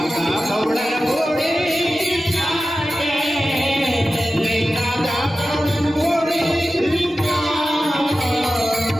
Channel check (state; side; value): normal; both; correlation 0.94